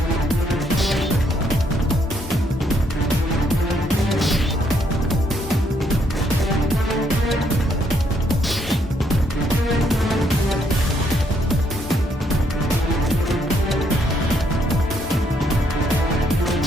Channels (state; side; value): normal; both; correlation 0.72